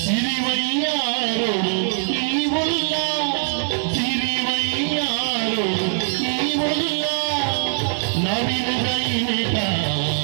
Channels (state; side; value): silent; left; 61 dB below the other